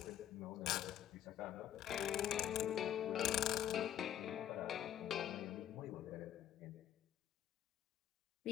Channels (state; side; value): quieter; right; 11.1 dB